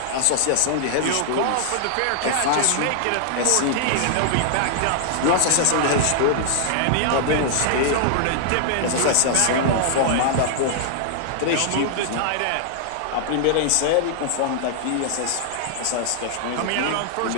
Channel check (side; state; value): both; different; correlation -0.01